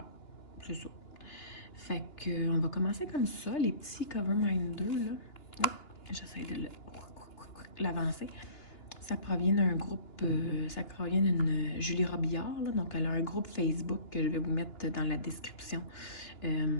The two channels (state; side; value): late; right; 2.9 ms